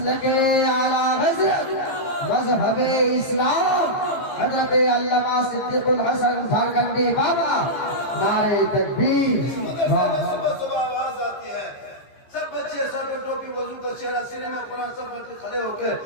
आला हज़रत मज़हब इस्लाम हज़रत अल्लामा सिद्दीक़ुल हसन झारखंडी बाबा, नारे तकबीर। आवाज आती है, सब बच्चे सर पे टोपी, वजू का चेहरा, सीने में कुरान, सब बच्चे खड़े होकर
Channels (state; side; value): late; right; 15 ms